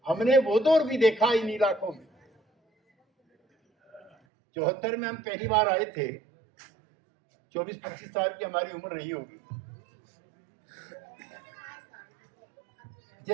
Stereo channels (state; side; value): drops out; left; at 4.1 s